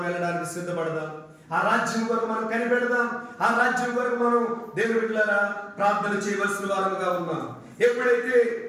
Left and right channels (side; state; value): both; identical; correlation 1.00